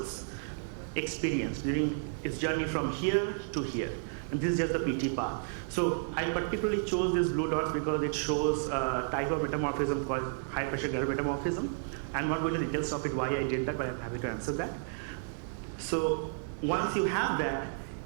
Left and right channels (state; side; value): silent; left; 56 dB below the other